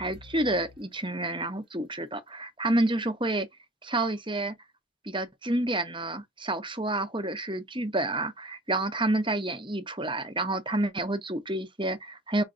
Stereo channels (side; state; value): both; normal; correlation 0.46